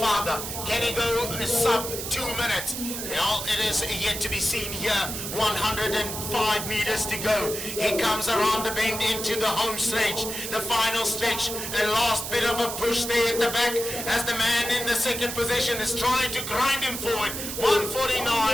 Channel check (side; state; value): right; noise; hiss, 6 dB below the sound